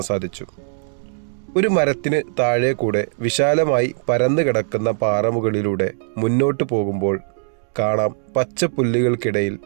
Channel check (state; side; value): silent; left; 65 dB below the other